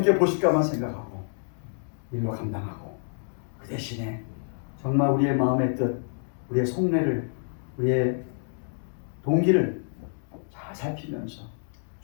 보실까만 생각하고 일로 감당하고 그 대신에 정말 우리의 마음의 뜻, 우리의 속내를, 우리의 동기를 잘 살피면서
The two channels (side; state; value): right; silent; digital silence